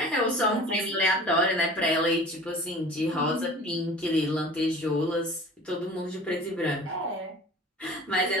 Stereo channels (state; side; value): normal; both; correlation 0.42